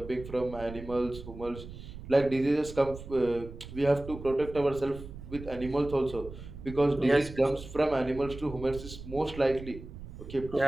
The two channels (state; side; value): noise; right; rumble, 13 dB below the sound